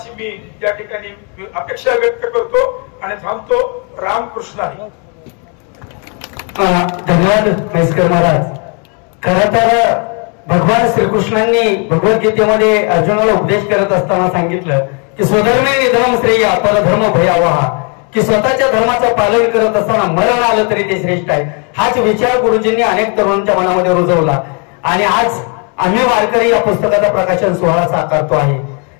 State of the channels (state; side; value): quieter; right; 36.5 dB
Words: मी या ठिकाणी अपेक्षा व्यक्त करतो आणि थांबतो। रामकृष्ण हरी। धन्यवाद म्हैसकर महाराज। खरं तर भगवान श्रीकृष्णांनी भगवद्गीतेमध्ये अर्जुनाला उपदेश करत असताना सांगितलं की स्वधर्मे निधनम श्रेय परधर्म भयावहा, की स्वतःच्या धर्माचं पालन करत असताना मरण आलं तरी ते श्रेष्ठ आहे। हाच विचार गुरुजींनी अनेक तरुणांच्या मनामध्ये रुजवला आणि आज आम्ही वारकरी या पुस्तकाचा प्रकाशन सोहळा साकारतो आहे।